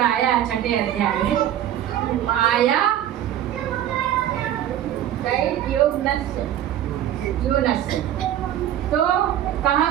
आया 6ठे अध्याय में, माया योनस्य। तो कहा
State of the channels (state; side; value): quieter; left; 11.6 dB